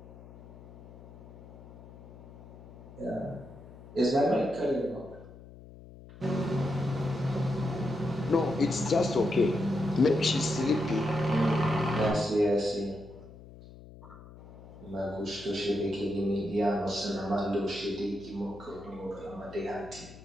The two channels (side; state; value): left; noise; hum, 18 dB below the sound